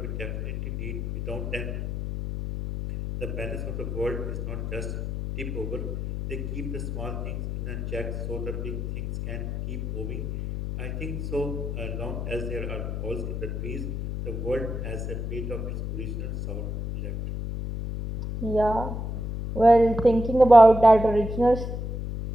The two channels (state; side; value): noise; left; hum, 4 dB below the sound